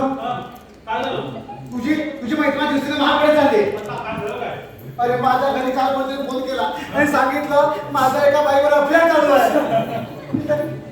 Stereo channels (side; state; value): both; identical; correlation 1.00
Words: हा? काय झालं? तुझी मैत्रीण दिवशीने महागडे झाले. आता काय झालं काय? अरे माझ्या घरी काल कोणतरी फोन केला आणि सांगितलं माझा एका बाईवर अफेअर चालू आहे